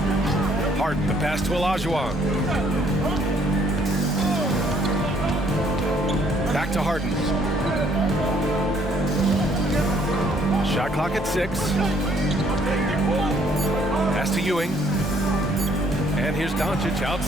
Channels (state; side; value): normal; both; correlation 0.64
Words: Harden, the pass to Olajuwon. Back to Harden. Shot clock at 6. Pass to Ewing. And here's Doncic